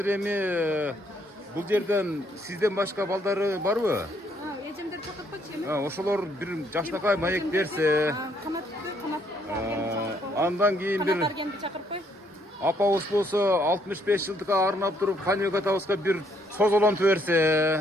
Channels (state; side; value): normal; both; correlation 0.69